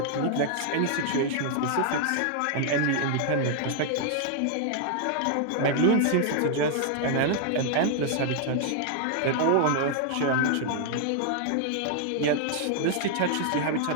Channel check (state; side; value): different; both; correlation 0.00